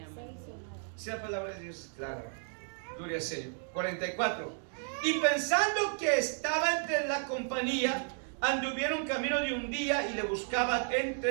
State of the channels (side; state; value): left; silent; 56 dB below the other